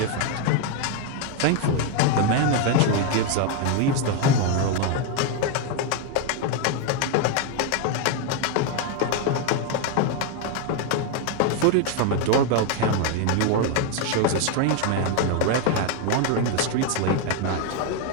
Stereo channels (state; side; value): different; both; correlation 0.01